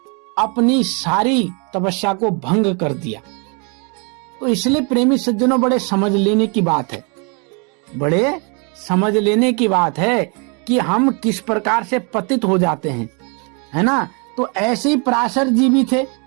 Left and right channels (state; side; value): quieter; left; 34.5 dB